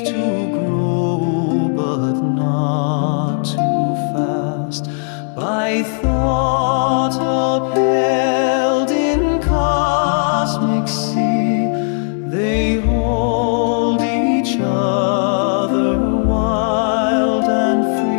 to grow, but not too fast. By thought upheld in cosmic sea, they hold each other wild and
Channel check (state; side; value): silent; right; 60 dB below the other